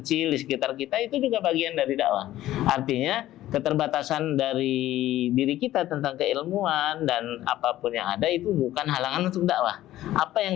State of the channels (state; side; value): quieter; right; 14.3 dB